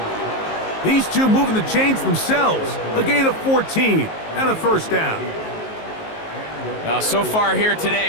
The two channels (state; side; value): late; right; 19 ms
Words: These two moving the chains themselves. A gain of 14 and a first down. Now, so far here